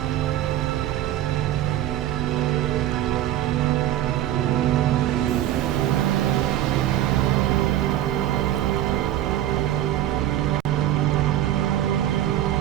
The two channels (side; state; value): left; quieter; 12.7 dB